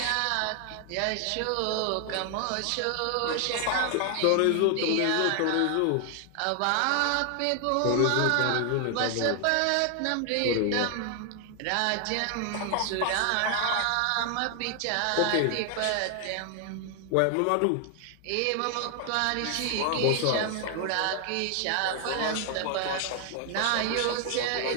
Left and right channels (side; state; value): both; different; correlation 0.00